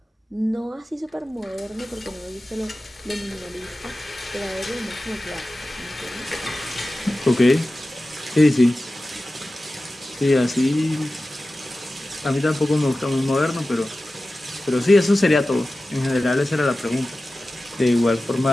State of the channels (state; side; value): normal; both; correlation 0.95